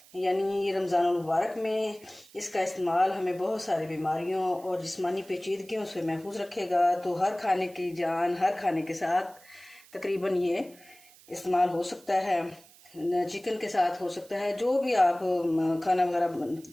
यानी ये रमज़ानुल मुबारक में इसका इस्तेमाल हमें बहुत सारी बीमारियों और जिस्मानी पेचीदगियों से महफूज रखेगा। तो हर खाने की जान, हर खाने के साथ तकरीबन ये इस्तेमाल हो सकता है, चिकन के साथ हो सकता है, जो भी आप खाना वगैरह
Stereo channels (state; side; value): noise; right; hiss, 25 dB below the sound